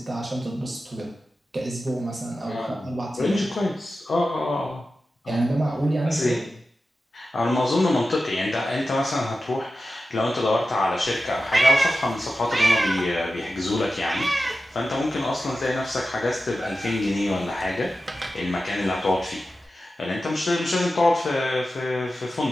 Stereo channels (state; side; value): normal; both; correlation 0.93